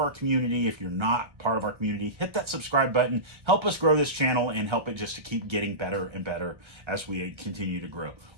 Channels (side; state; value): left; late; 1.3 ms